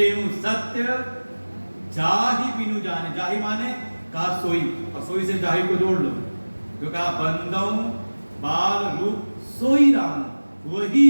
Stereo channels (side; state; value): both; inverted; correlation -1.00